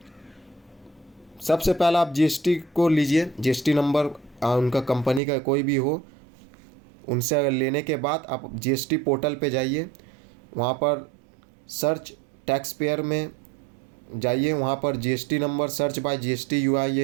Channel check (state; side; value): drops out; left; at 5.2 s